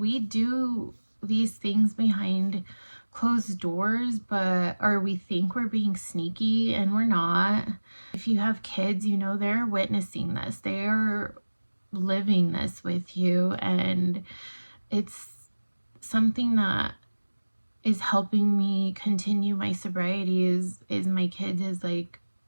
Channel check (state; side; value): inverted; both; correlation -1.00